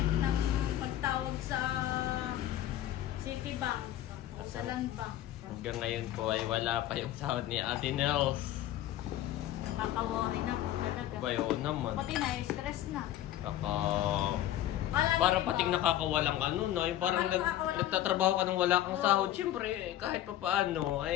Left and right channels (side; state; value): right; quieter; 13.0 dB